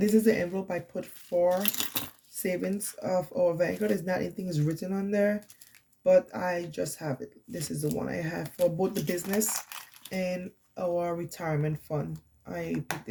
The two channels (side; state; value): both; identical; correlation 1.00